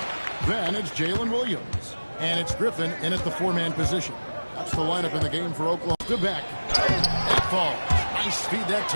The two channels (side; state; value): both; inverted; correlation -1.00